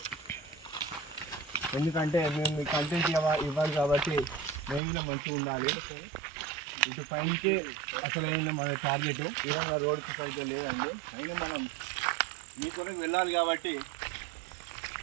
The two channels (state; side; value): drops out; left; at 4.8 s